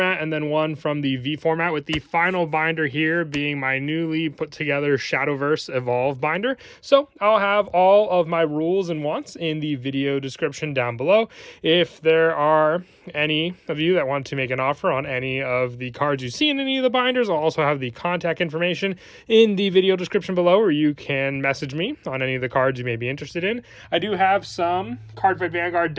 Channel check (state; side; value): identical; both; correlation 1.00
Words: and then 1 from the V format, with the final binder here being my newly put together Shadowverse Evolve binder. So I'll have all of my rules and wants in the video description down below. If there are any of you that want to make an offer on any of the cards you see in any of the binders, I'll also have the contact information in the video description below, where you can message me on any of the cards you may be interested in. I do have some Cardfight Vanguard